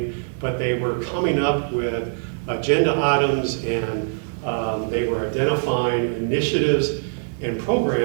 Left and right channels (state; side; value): silent; left; 64 dB below the other